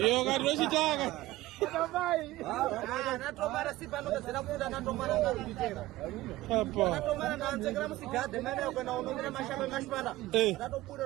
ngati chitaka. Natomara si pano kazina futa natomara ngarudi tena. Apa. Natomara nanzekera musigade mene kwenda unomira mashamba mashpala.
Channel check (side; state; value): left; quieter; 17.3 dB